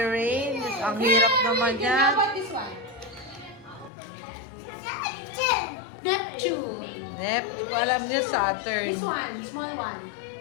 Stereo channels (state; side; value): drops out; right; at 3.9 s